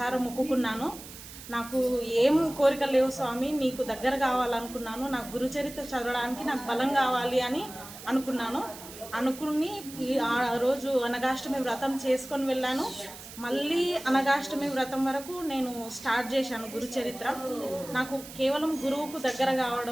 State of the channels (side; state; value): right; noise; hiss, 15 dB below the sound